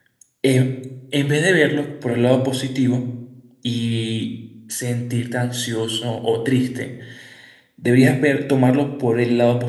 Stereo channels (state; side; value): identical; both; correlation 1.00